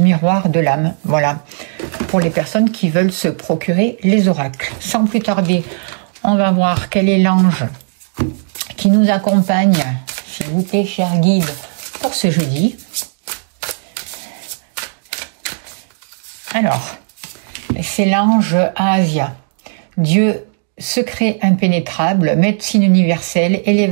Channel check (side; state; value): left; silent; digital silence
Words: de l'âme. Voilà, pour les personnes qui veulent se procurer les oracles. Sans plus tarder, on va voir quel est l'ange qui nous accompagne, s'il vous plaît, cher guide, pour ce jeudi. Alors, c'est l'ange Asia. Dieu, secret impénétrable, médecine universelle,